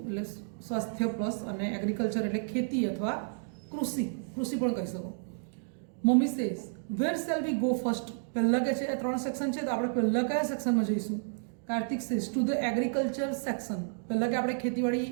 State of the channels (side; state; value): left; silent; digital silence